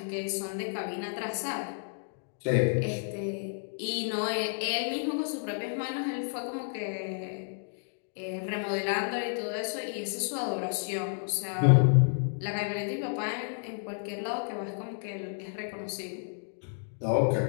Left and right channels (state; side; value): silent; right; digital silence